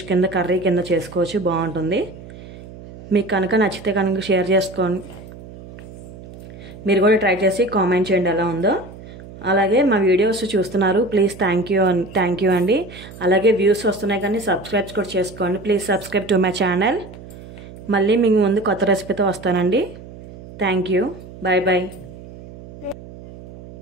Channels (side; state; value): right; noise; hum, 16 dB below the sound